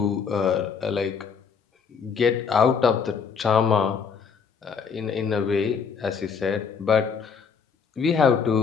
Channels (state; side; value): quieter; right; 6.1 dB